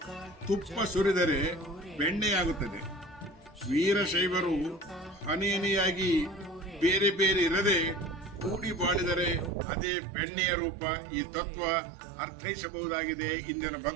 ತುಪ್ಪ ಸುರಿದರೆ ಬೆಣ್ಣೆಯಾಗುತ್ತದೆ. ವೀರಶೈವರು ಹನಿಯಾಗಿ ಬೇರೆ ಬೇರೆ ಇರದೆ ಕೂಡಿ ಬಾಳಿದರೆ ಅದೇ ಬೆಣ್ಣೆಯ ರೂಪ. ಈ ತತ್ವ ಅರ್ಥೈಸಬಹುದಾಗಿದೆ ಇಂದಿನ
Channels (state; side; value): drops out; left; at 9.6 s